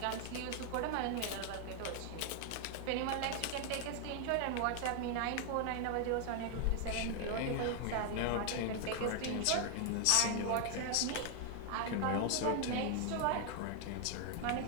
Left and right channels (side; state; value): both; different; correlation 0.01